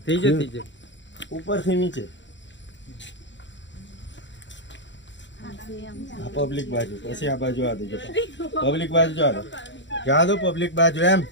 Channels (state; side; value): late; right; 0.53 ms